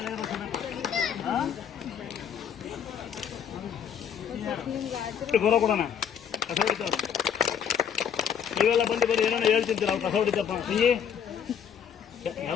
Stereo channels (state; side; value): quieter; right; 8.2 dB